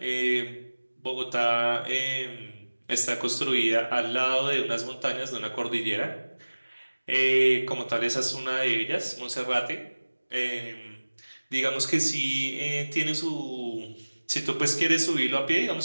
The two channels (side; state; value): both; inverted; correlation -1.00